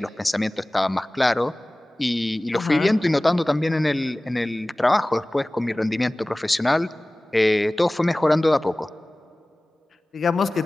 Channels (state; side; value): normal; both; correlation 0.98